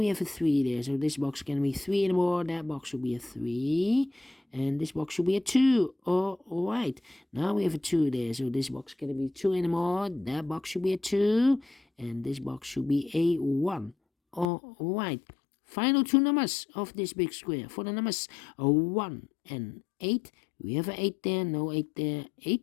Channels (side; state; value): right; drops out; at 14.5 s